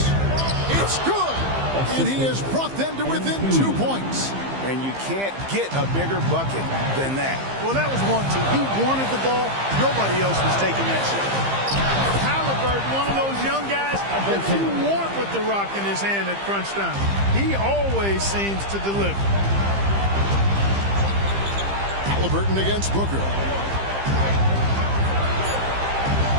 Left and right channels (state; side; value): late; left; 15 ms